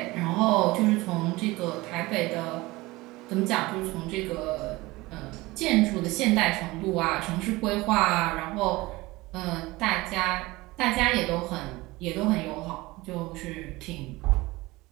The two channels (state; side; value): quieter; left; 20.8 dB